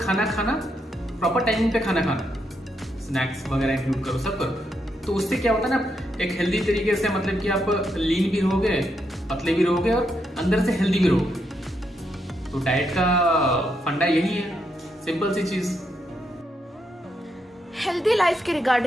खाना, प्रॉपर टाइमिंग पे खाना खाना, स्नैक्स वगैरह इंक्लूड करो, सब करो। तो उससे क्या होता है ना, एक हेल्दी तरीके से, मतलब कि आप लीन भी रहोगे, पतले भी रहोगे और अंदर से हेल्दी भी रहोगे। तो डाइट का फंडा यही है, सिंपल सी चीज। हेल्दी लाइफ के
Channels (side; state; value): both; normal; correlation 0.80